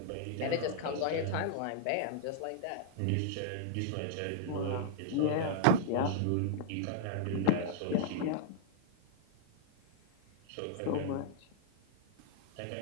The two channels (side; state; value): both; different; correlation -0.01